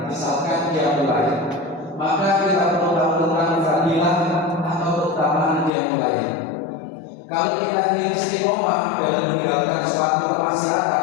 misalkan dia mulai, maka kita perlu tahu tentang fadilah atau keutamaan dia mulai. Kalau kita ingin istiqomah dalam meninggalkan suatu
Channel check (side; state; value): right; drops out; at 5.7 s